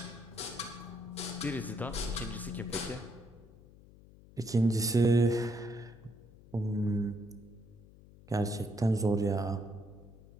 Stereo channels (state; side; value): noise; left; hum, 22 dB below the sound